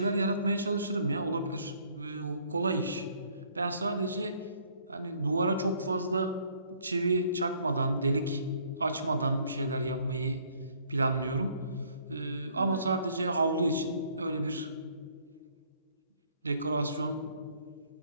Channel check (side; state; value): both; inverted; correlation -0.62